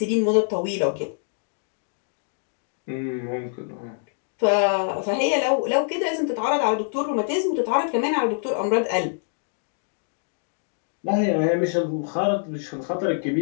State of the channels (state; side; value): silent; right; digital silence